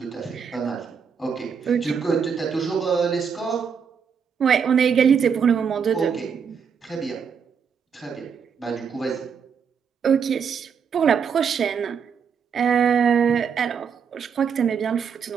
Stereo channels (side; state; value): left; quieter; 6.7 dB